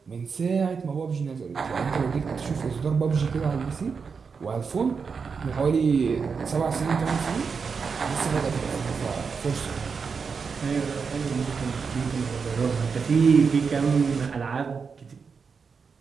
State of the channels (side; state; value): left; quieter; 5.5 dB